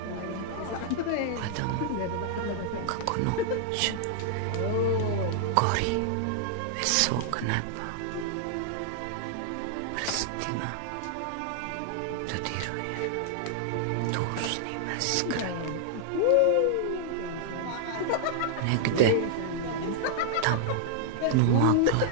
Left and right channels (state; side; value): different; both; correlation -0.01